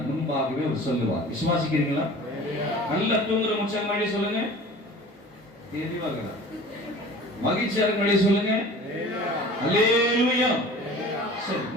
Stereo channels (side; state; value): both; normal; correlation 0.42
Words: முன்பாகவே அவர் சொல்லுவார். விசுவாசிக்கிறீங்களா? நல்ல தூங்குற முச்சல் மாதிரி சொல்லுங்க. மகிழ்ச்சியாக சொல்லுங்க. அல்லேலூயா. சரி,